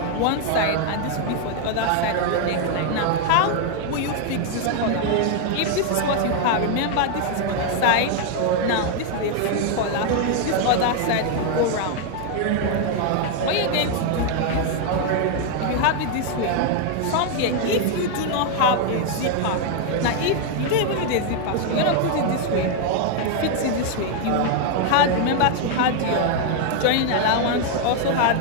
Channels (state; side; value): different; both; correlation 0.00